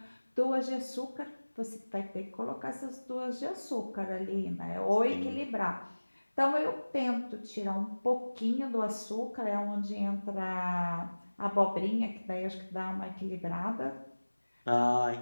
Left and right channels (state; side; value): inverted; both; correlation -1.00